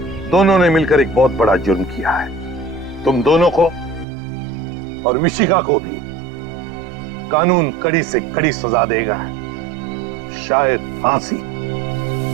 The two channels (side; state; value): left; drops out; at 4.0 s